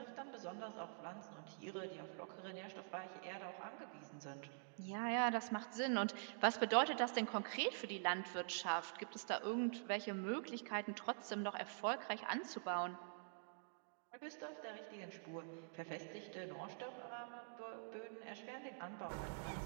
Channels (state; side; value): silent; left; digital silence